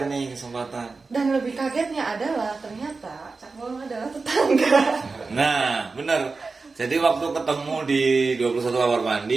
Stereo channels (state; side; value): quieter; left; 4.1 dB